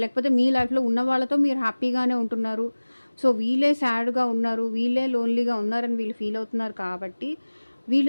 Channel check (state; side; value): inverted; both; correlation -1.00